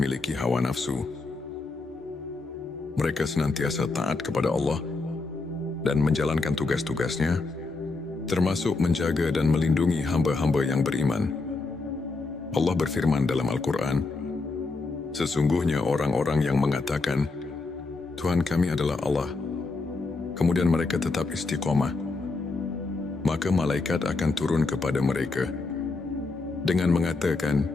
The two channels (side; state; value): right; quieter; 3.7 dB